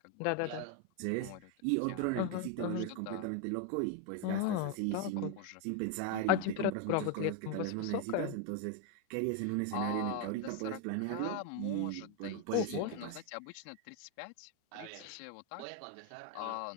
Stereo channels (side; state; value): both; different; correlation 0.01